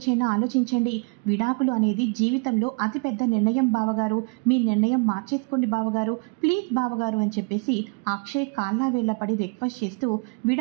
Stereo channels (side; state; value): left; quieter; 33.4 dB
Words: ఆలోచించండి, విడాకులు అనేది జీవితంలో అతిపెద్ద నిర్ణయం బావగారు, మీ నిర్ణయం మార్చేసుకోండి బావగారు, ప్లీజ్ బావగారు అని చెప్పేసి అక్షయ్ కాళ్ళ వేళ్ళపడి రిక్వెస్ట్ చేస్తూ